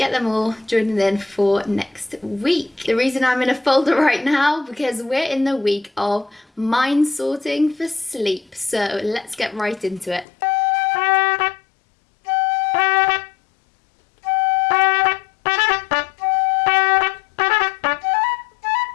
them all joining in for next week. The reason I'm in a folder right now, because we're in the week of mind sorting for sleep, so let's get right into it.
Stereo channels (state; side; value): drops out; right; at 10.2 s